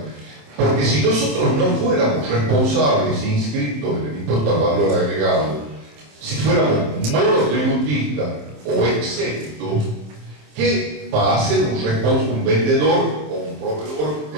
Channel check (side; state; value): left; late; 27 ms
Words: Porque si nosotros no fuéramos responsables inscritos en el impuesto al valor agregado, si fuéramos monotributistas o exentos, ¿qué va a hacer un vendedor o un proveedor